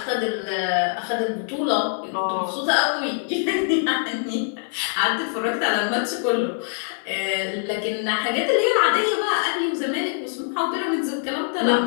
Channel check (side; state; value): right; silent; 57 dB below the other